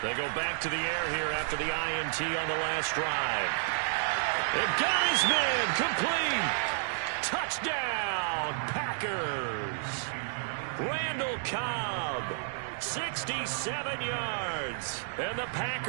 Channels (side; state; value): left; silent; digital silence